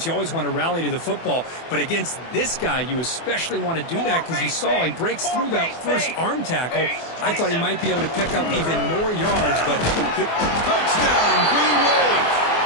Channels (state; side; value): late; right; 24 ms